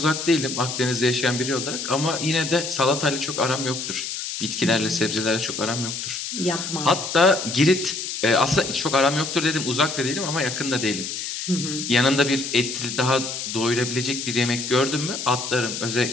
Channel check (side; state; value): left; noise; hiss, 5 dB below the sound